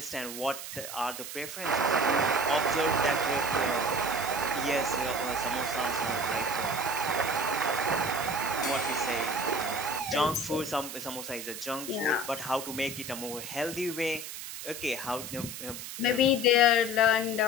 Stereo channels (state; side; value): noise; right; hiss, 9 dB below the sound